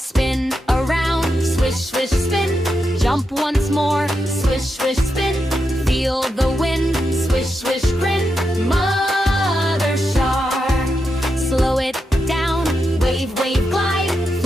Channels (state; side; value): normal; both; correlation 0.86